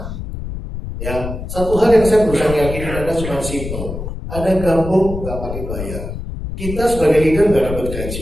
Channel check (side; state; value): left; noise; rumble, 7 dB below the sound